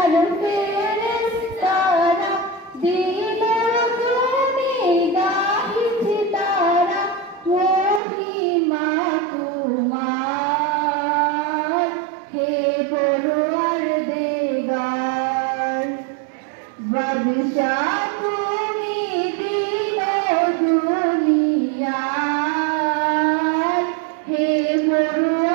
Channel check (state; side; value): drops out; left; at 8.0 s